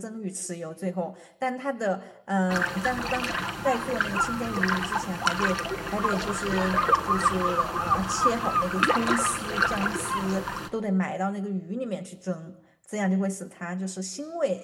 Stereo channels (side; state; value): both; identical; correlation 1.00